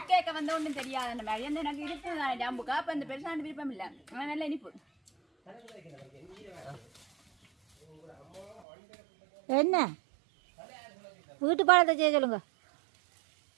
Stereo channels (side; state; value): left; drops out; at 8.6 s